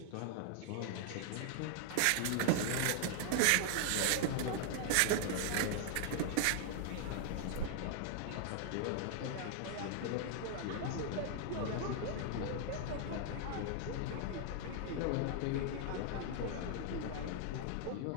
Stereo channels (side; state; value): both; different; correlation 0.00